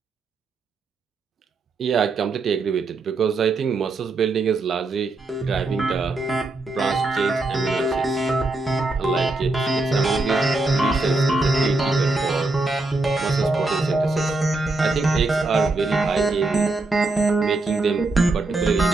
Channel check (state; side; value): quieter; left; 3.2 dB